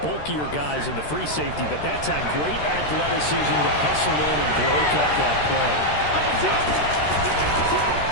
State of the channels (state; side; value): late; right; 13 ms